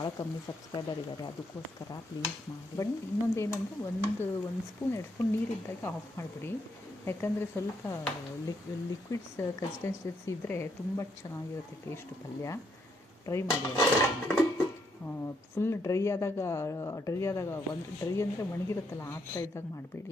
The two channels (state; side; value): normal; both; correlation 0.76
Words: ಕಮ್ಮಿ ಸಬ್ಸ್ಕ್ರೈಬರ್ ಇದ್ದಾರೆ, ಅದಕ್ಕೋಸ್ಕರ ಪ್ಲೀಸ್ ಮಾಡಿ. ಬಟ್ ಇನ್ನೊಂದು ಏನಂದರೆ ಒಂದು ಸ್ಪೂನ್ 2 ಸ್ಪೂನ್ ನೀರಿದ್ದಾಗ ಆಫ್ ಮಾಡಿಬಿಡಿ, ಯಾಕಂದರೆ ಸ್ವಲ್ಪ ಲಿಕ್ವಿಡ್ಸ್ ಕನ್ಸಿಸ್ಟೆನ್ಸಿ ಇದ್ದರೆ ತುಂಬ ಚೆನ್ನಾಗಿರುತ್ತೆ ಟೇಸ್ಟು ಪಲ್ಯ. ಟ್ರೈ ಮಾಡಿ. ಫುಲ್ ಡ್ರೈ ಆದಾಗ ಡ್ರೈ ಅಂದರೆ ಒಣಗಿರುತ್ತಲ್ಲ ಆ ಥರ ಇದ್ದಾಗ